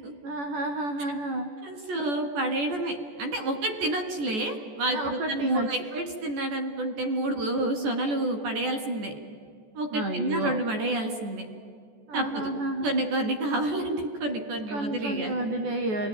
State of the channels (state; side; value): late; left; 14 ms